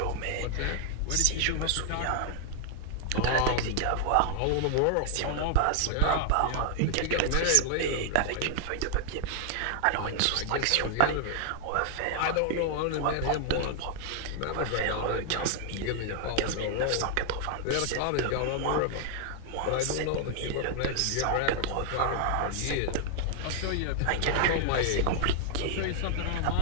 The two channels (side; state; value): both; different; correlation 0.00